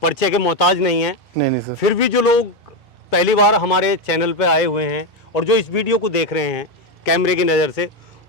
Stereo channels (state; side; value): normal; both; correlation 0.08